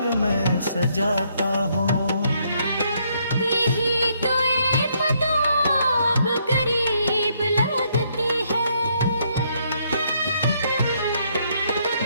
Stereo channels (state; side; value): inverted; both; correlation -0.72